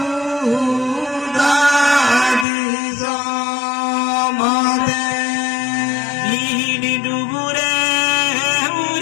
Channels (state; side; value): drops out; right; at 2.5 s